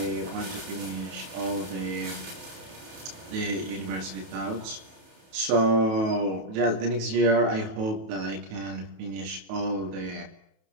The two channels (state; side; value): late; left; 28 ms